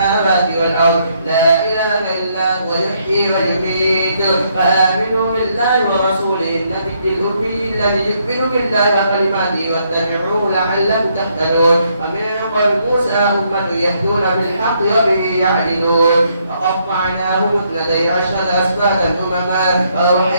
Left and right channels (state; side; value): inverted; both; correlation -0.73